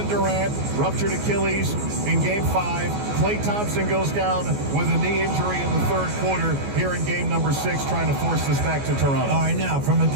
Durant, ruptured Achilles in Game 5. Klay Thompson goes down with a knee injury in the third quarter here in Game number 6, trying to force this back to Toronto. All right, now, from a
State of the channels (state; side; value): late; left; 14 ms